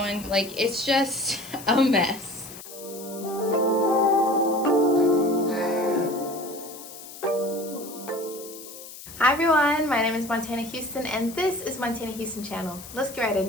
Like, it's just a mess. Hi everyone, my name is Montana Houston and this is Montana Houston channel. Let's get right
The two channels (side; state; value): left; noise; hiss, 15 dB below the sound